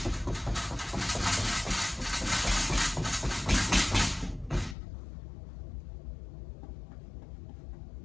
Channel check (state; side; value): drops out; right; at 4.8 s